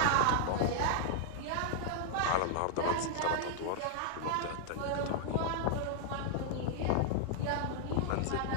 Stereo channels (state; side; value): different; both; correlation -0.01